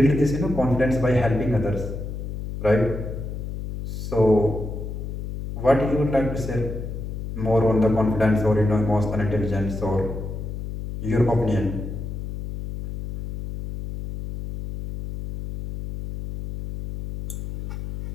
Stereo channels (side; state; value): left; noise; hum, 6 dB below the sound